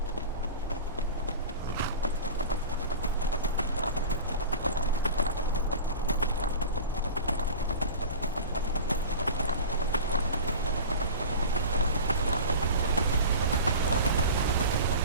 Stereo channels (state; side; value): inverted; both; correlation -0.32